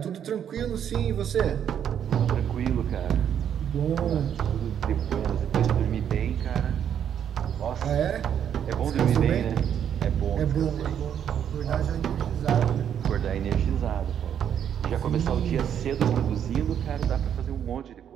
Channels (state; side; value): quieter; left; 9.0 dB